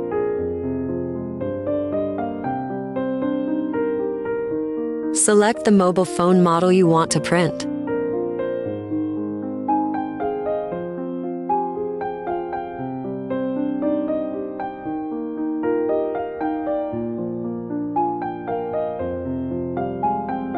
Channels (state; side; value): identical; both; correlation 1.00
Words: Select the mobile phone model you want to print.